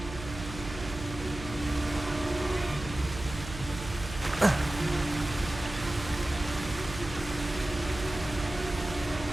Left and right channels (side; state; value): right; noise; hum, 10 dB below the sound